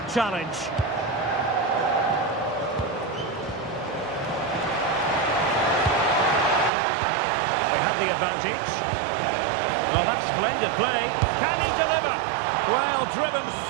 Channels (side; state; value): left; drops out; at 6.7 s